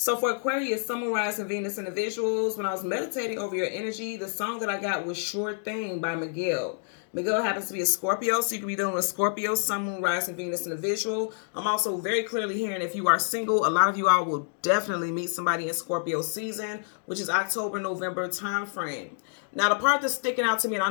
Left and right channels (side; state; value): right; silent; digital silence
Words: for Aquarius, Sun, Moon, Rising, Venus individuals, when I was meditating over your energy, the song that I got was Sure Thing by Miguel. Miguel happens to be a Scorpio, so you could be dealing with Scorpio, Sun, Moon, Rising, Venus individual. I'm also very clearly hearing if you are single, a lot of you all will definitely meet somebody in Scorpio season, which is October, November time frame. Now, the part that's sticking out to me, and